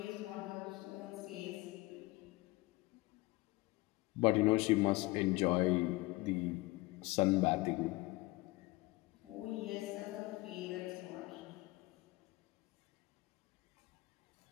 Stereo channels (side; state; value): right; quieter; 22.1 dB